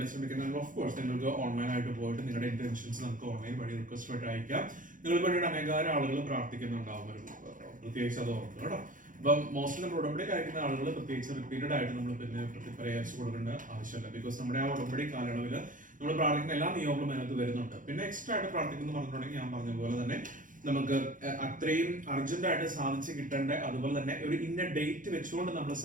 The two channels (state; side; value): late; left; 0.38 ms